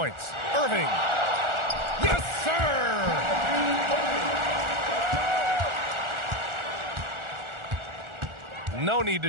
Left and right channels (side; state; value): left; late; 1.4 ms